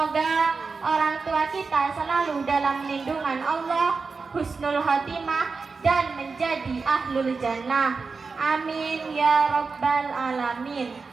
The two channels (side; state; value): left; quieter; 4.6 dB